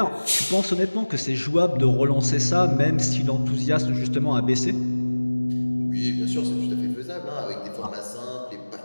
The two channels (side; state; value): both; inverted; correlation -1.00